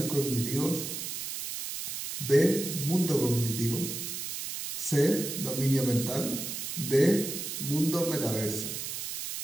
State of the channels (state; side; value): noise; right; hiss, 5 dB below the sound